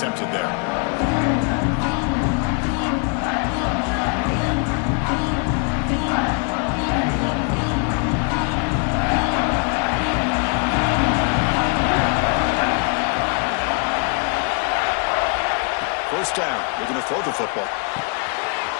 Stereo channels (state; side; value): quieter; right; 37.0 dB